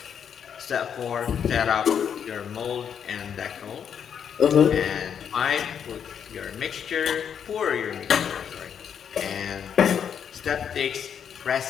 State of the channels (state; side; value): quieter; right; 8.0 dB